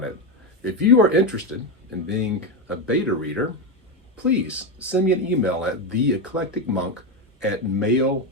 it. If you are interested in being a beta reader, please send me an email at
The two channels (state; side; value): normal; both; correlation 0.11